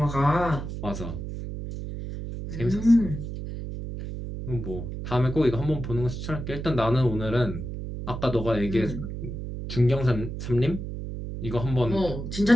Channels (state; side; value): noise; right; hum, 7 dB below the sound